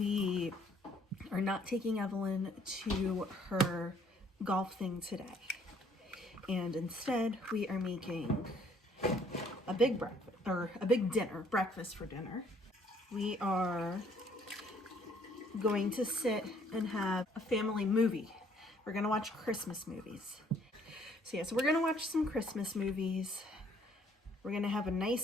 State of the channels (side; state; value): both; normal; correlation 0.63